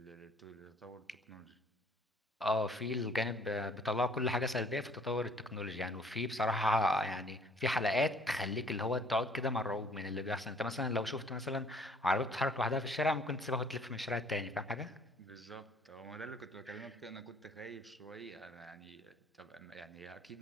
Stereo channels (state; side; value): normal; both; correlation 0.58